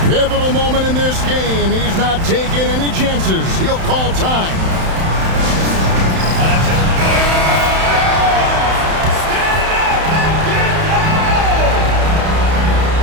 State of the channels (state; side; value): late; left; 31 ms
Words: Pivotal moment in this game. He's not taking any chances. He'll call time.